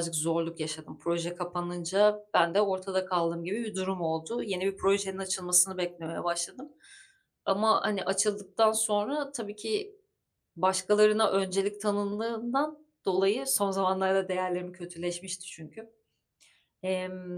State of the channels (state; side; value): identical; both; correlation 1.00